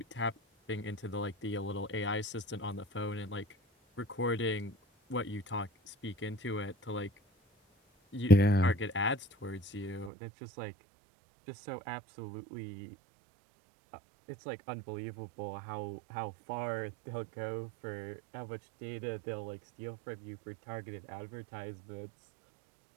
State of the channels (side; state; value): left; drops out; at 10.1 s